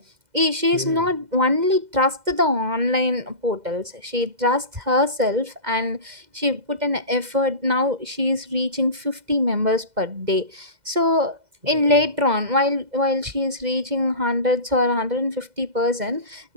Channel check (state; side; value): late; left; 2.0 ms